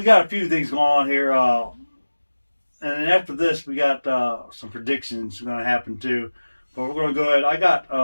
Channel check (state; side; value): inverted; both; correlation -1.00